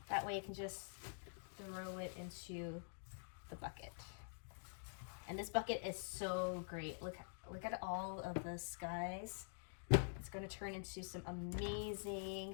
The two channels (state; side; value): silent; right; digital silence